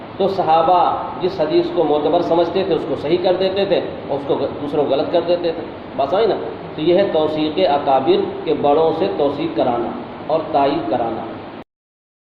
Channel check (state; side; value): identical; both; correlation 1.00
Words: تو صحابہ جس حدیث کو معتبر سمجھتے تھے اس کو صحیح کر دیتے تھے اور اس کو دوسروں غلط کر دیتے تھے۔ بات سمجھ نا؟ تو یہ ہے توثیق اکابر کے بڑوں سے توثیق کرانا اور تائید کرانا۔